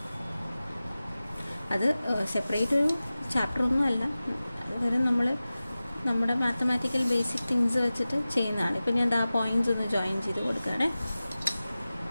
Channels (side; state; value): both; inverted; correlation -0.96